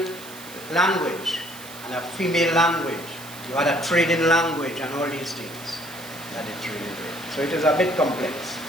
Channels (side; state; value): right; noise; hiss, 16 dB below the sound